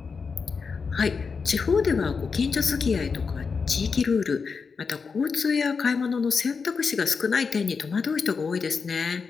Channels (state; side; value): quieter; right; 5.2 dB